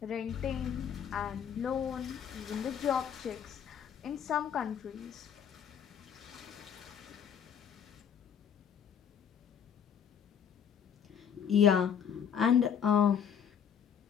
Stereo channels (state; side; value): quieter; right; 8.2 dB